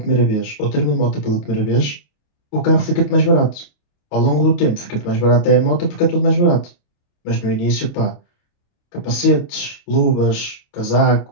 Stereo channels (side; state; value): right; late; 28 ms